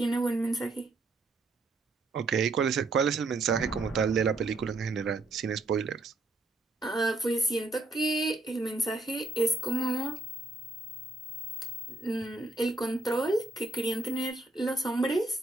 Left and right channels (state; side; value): quieter; left; 3.2 dB